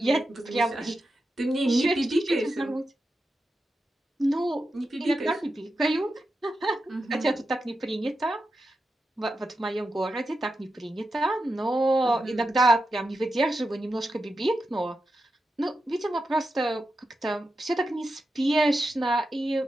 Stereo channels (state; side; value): normal; both; correlation 0.89